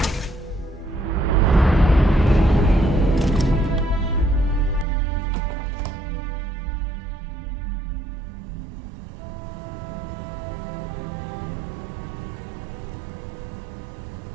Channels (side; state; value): left; drops out; at 4.9 s